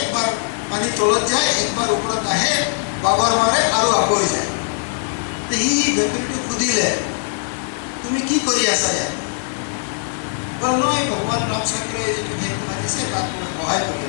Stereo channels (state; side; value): silent; right; 66 dB below the other